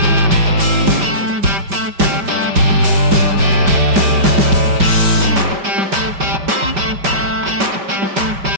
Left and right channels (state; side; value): late; left; 5.1 ms